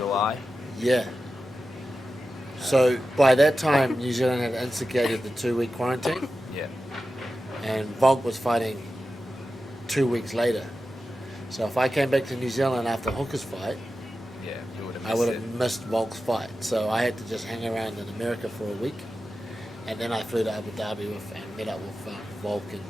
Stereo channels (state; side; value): normal; both; correlation 0.92